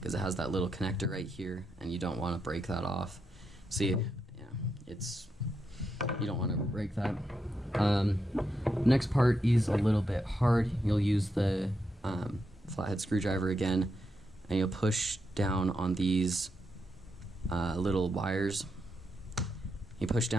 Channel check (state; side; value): normal; both; correlation 0.83